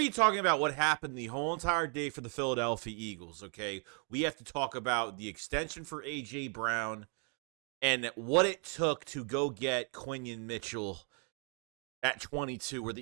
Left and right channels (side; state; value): left; quieter; 40.0 dB